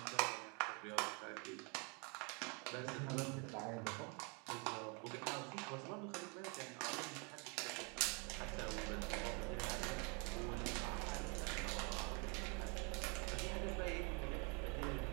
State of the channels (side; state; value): left; quieter; 33.5 dB